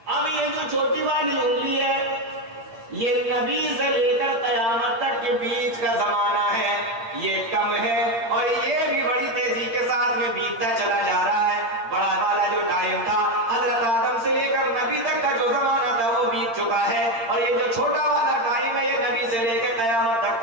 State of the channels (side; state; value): left; late; 8.8 ms